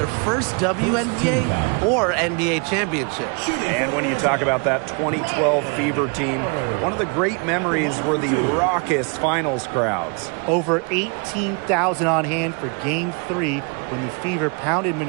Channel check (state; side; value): quieter; left; 35.3 dB